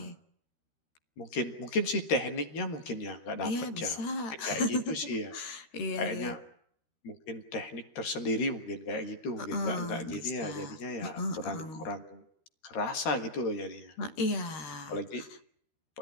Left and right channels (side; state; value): right; late; 13 ms